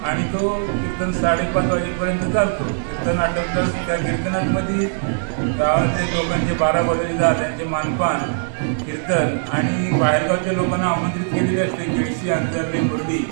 आणि तो कीर्तन 5:30 वाजेपर्यंत चालतो. कीर्तन आटोपलं त्या कीर्तनामध्ये गावातले लोकांचे 12 बरोबरीदार त्यांचे मानपान, कीर्तन आणि बाहेरगावच्या लोकांना आमंत्रित केलेले असते. केळशी, अंतरले, मुरडी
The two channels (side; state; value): left; silent; digital silence